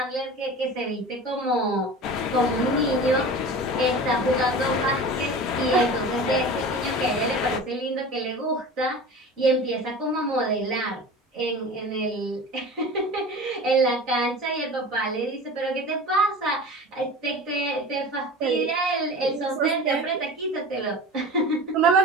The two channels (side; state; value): both; normal; correlation 0.35